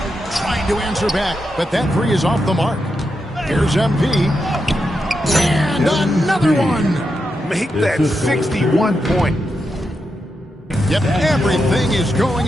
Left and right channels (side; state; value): both; normal; correlation 0.86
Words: Trying to answer back, but that three is off the mark. Here's MP. And another one. Make that 61 point. Yep, everything is going